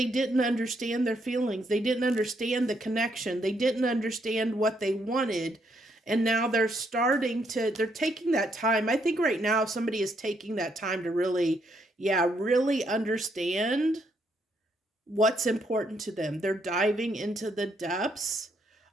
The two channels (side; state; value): both; normal; correlation 0.74